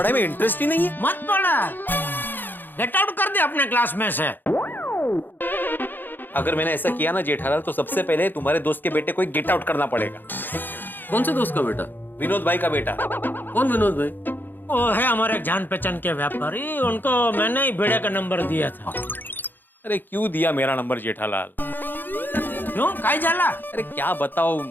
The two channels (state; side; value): late; right; 0.091 ms